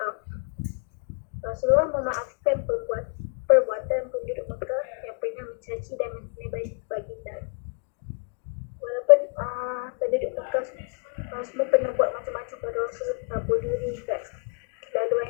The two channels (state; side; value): quieter; right; 36.3 dB